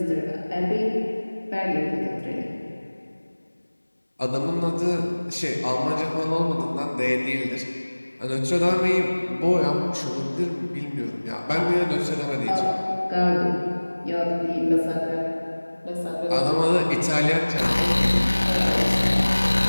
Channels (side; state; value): both; inverted; correlation -1.00